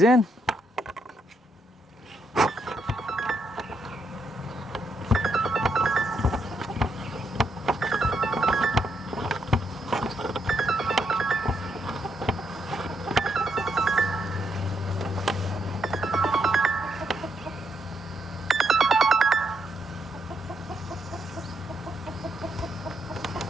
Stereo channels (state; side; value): normal; both; correlation 0.78